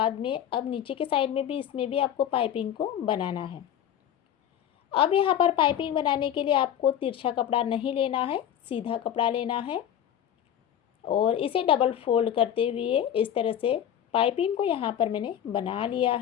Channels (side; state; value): right; quieter; 10.1 dB